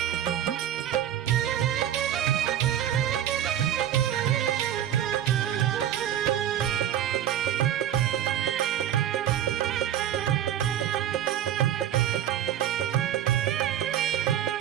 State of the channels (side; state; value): left; quieter; 10.8 dB